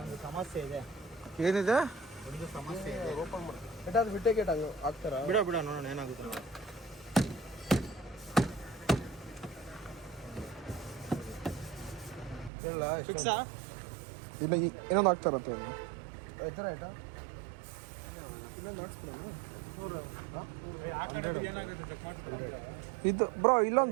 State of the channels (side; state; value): left; drops out; at 12.5 s